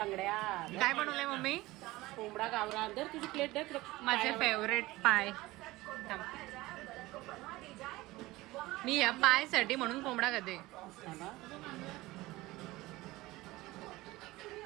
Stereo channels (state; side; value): quieter; left; 19.3 dB